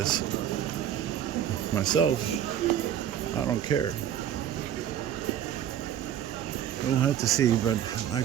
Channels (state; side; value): quieter; left; 10.2 dB